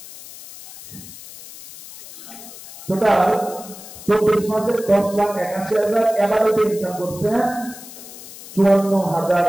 টোটাল 24 মাসে 10,81,000 এভারেজে ইনকাম করছে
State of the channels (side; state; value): left; noise; hiss, 16 dB below the sound